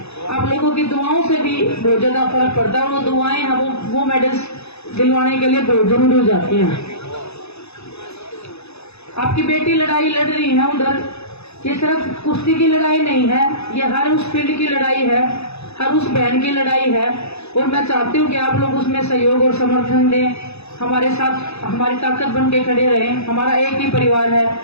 आप लोगों की दुआओं से भी बहुत ज्यादा फर्क पड़ता है। वो दुआएं हैं वो मेडल्स दिलवाने के लिए बहुत जरूरी हो जाती हैं। आपकी बेटी लड़ाई लड़ रही है उधर, ये सिर्फ कुश्ती की लड़ाई नहीं है, ये हर उस फील्ड की लड़ाई है, हर उस बहन की लड़ाई है। और मैं चाहती हूँ कि आप लोग उसमें सहयोग और समर्थन दें, हमारे साथ हमारी ताकत बन के खड़े रहें। हमारा एक ही परिवार है,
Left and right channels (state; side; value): late; right; 0.79 ms